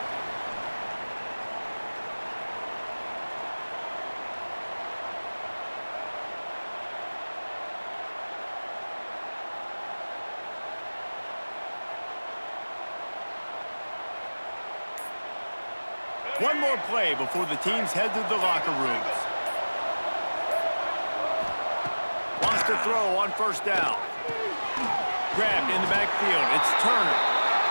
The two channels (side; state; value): both; inverted; correlation -1.00